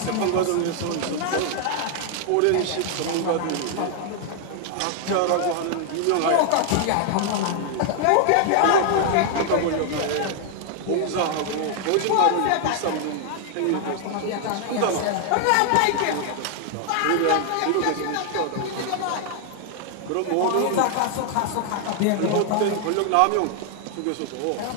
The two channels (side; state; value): both; different; correlation 0.00